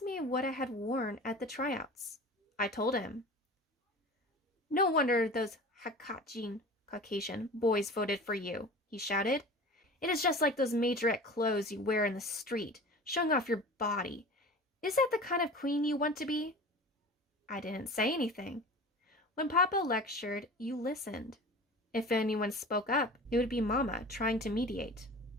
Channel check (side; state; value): both; normal; correlation 0.38